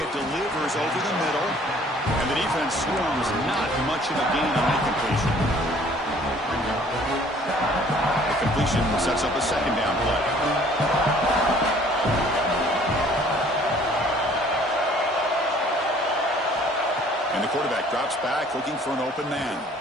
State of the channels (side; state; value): both; normal; correlation 0.55